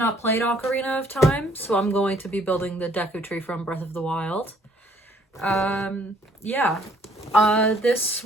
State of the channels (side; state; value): both; normal; correlation 0.63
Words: played Ocarina of Time, so I'm going to be building the Deku Tree from Breath of the Wild. This